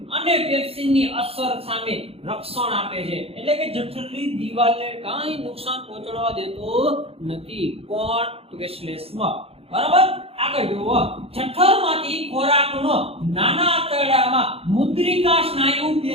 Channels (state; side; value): late; left; 0.28 ms